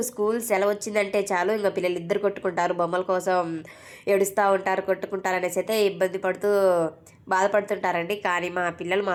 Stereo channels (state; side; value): identical; both; correlation 1.00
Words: స్కూల్ సెలవు వచ్చిందంటే చాలు ఇంక పిల్లలు ఇద్దరు కొట్టుకుంటారు, బొమ్మల కోసం ఏడుస్తూ ఉంటారు, కొట్టుకుంటారు అనేసి అయితే ఇబ్బంది పడుతూ బాధపడుతుంటారండి. కానీ మా పిల్లలు